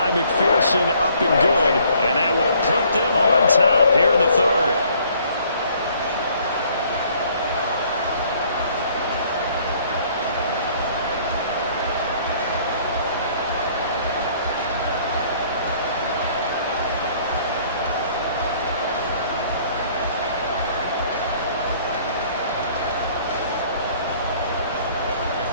McPherson, up and good. And that will put them on top here in the 3rd.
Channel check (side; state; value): both; inverted; correlation -0.60